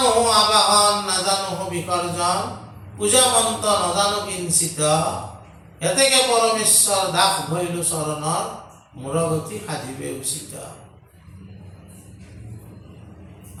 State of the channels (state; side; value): identical; both; correlation 1.00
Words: আবাহন, নাজানো বিসৰ্জন, পূজা মন্ত্ৰ নাজানো কিঞ্চিত, এতেকে পৰমেশ্বৰ দাস ভৈলো চৰণৰ মূৰগতি সাধিবে উচিত।